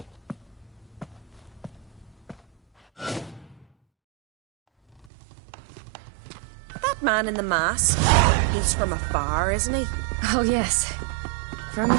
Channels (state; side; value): drops out; left; at 5.1 s